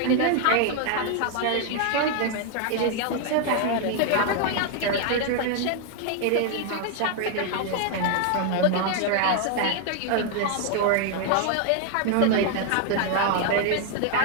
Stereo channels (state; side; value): different; both; correlation 0.00